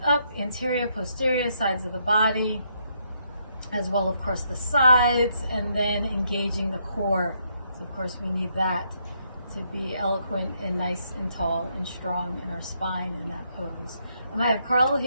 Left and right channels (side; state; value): both; inverted; correlation -0.75